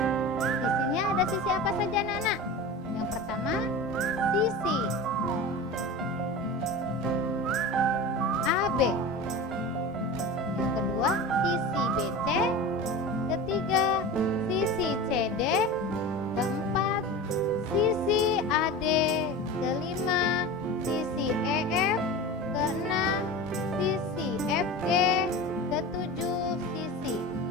Sisinya ada sisi apa saja, anak-anak? Yang pertama, sisi AB. Yang kedua, sisi BC. Ketiga, sisi CD. Keempat, sisi AD. Kelima, sisi EF. Keenam, sisi FG. Ketujuh, sisi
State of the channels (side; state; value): both; normal; correlation 0.31